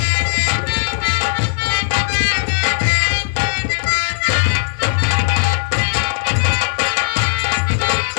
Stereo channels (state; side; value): silent; right; digital silence